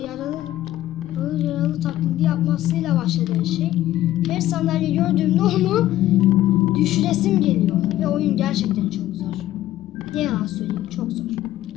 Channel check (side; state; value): right; quieter; 14.1 dB